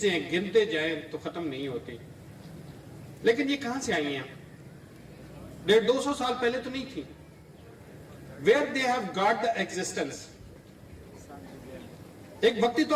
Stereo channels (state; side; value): identical; both; correlation 1.00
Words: गिनते जाएं तो खत्म नहीं होती। लेकिन ये कहां से आई हैं? 150-200 साल पहले तो नहीं थी। Where they have got the existence? एक वक्ती